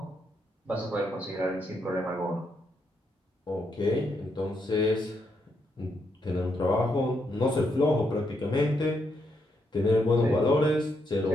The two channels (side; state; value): both; normal; correlation 0.79